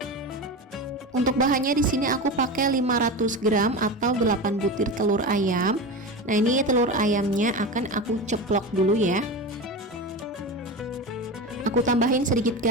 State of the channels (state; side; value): normal; both; correlation 0.24